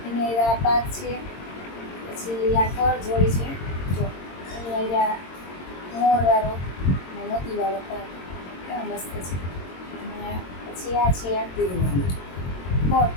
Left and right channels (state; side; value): late; right; 22 ms